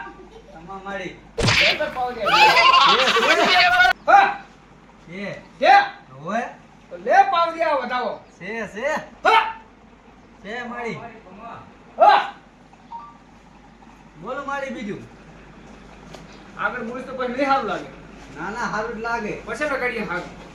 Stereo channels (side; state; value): both; identical; correlation 1.00